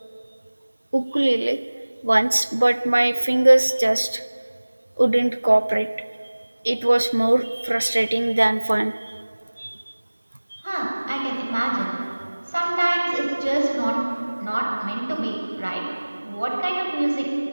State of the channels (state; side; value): inverted; both; correlation -1.00